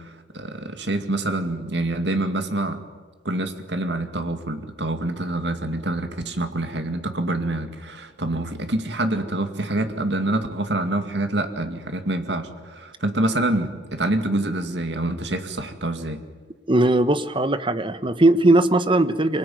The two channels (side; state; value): both; normal; correlation 0.65